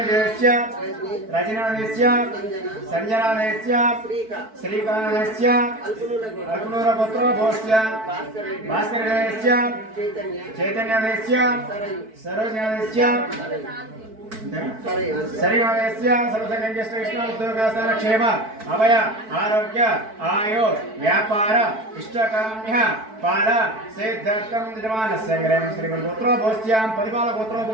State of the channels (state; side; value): late; left; 4.6 ms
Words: रजनादेस्य संजनादेस्य श्रीकानदेस्य अग्नूर गोत्रोभवस्य भास्करदेस्य चैतन्यदेस्य सरोजनादेस्य शरीरस्य सर्वसंगेष्टकृष्ण क्षेम अभय आरोग्य आयु व्यापार इष्टकाम्य पाल सिद्धार्थं यजमान संग्रह श्रीगोत्रोभवस्य परिपाल